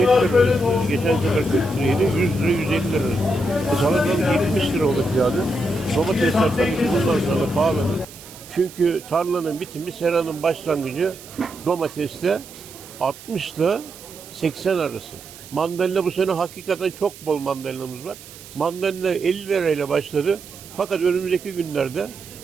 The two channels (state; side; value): noise; right; hiss, 18 dB below the sound